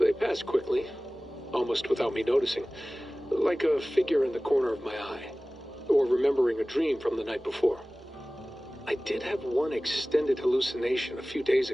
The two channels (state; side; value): normal; both; correlation 0.98